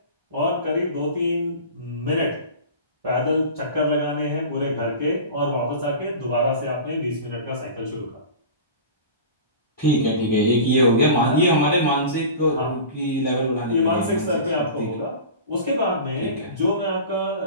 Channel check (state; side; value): inverted; both; correlation -0.35